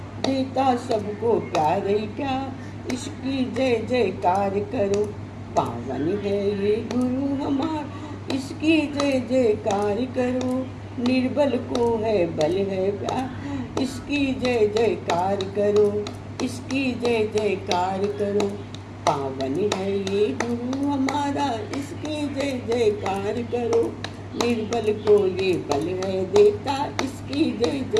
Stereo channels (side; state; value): both; identical; correlation 1.00